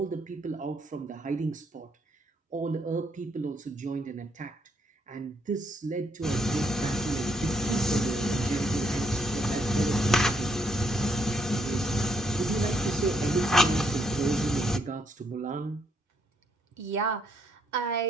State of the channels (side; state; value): both; normal; correlation 0.74